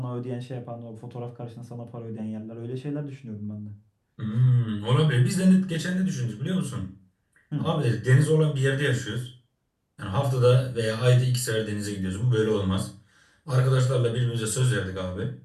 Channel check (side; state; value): both; identical; correlation 1.00